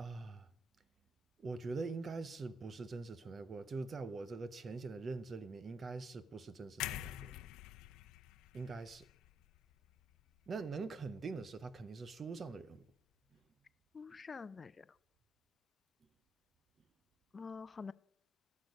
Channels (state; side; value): normal; both; correlation 0.76